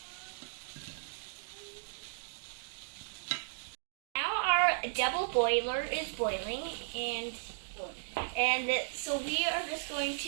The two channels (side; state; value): left; silent; digital silence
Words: Now our double boiler is boiling, and so we are just going